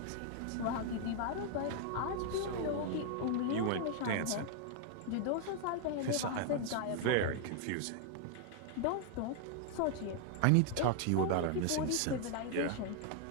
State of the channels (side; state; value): both; different; correlation 0.00